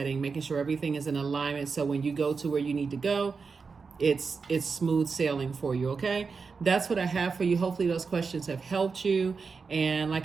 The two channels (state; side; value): quieter; left; 5.0 dB